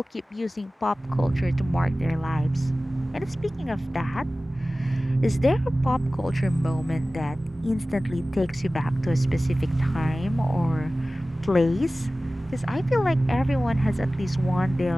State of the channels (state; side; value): normal; both; correlation 0.97